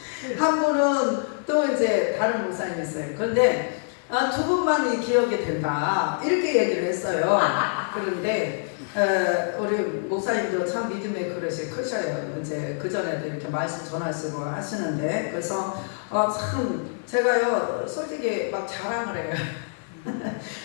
한 분은 또 이제 다른 목사님이 있어요. 그런데 두 분만이 기억이 된다 이렇게 얘기를 했어요. 그런데 우리 목사님도 참 믿음의 그릇이 크셔요. 이제 그 전에도 이렇게 말씀 전하시고 하시는데 그래서 참 제가요 솔직히 막 자랑을 해요.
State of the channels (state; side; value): silent; right; digital silence